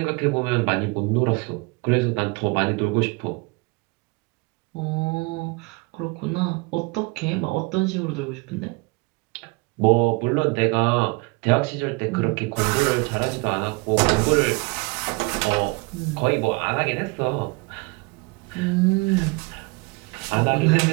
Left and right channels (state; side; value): quieter; left; 27.7 dB